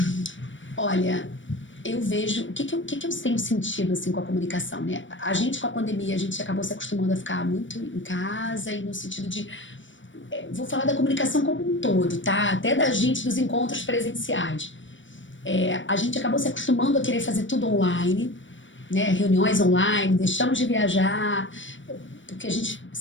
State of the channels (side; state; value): right; late; 0.56 ms